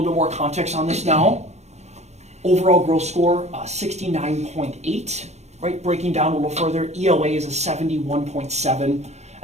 bit more context on this now. Overall growth score, 69.8, right, breaking down a little further, ELA is a 71.7,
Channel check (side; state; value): left; late; 0.32 ms